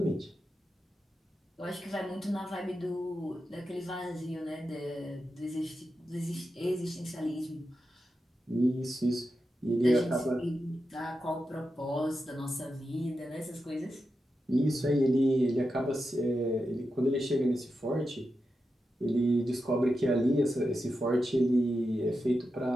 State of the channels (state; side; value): normal; both; correlation 0.89